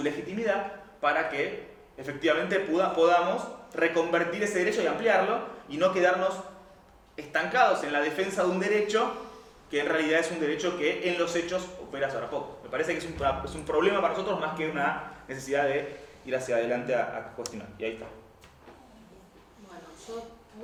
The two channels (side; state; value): both; identical; correlation 1.00